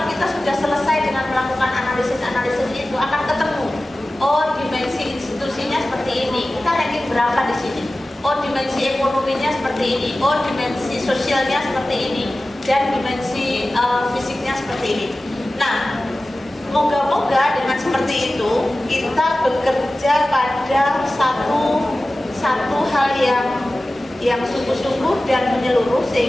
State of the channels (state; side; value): normal; both; correlation 0.96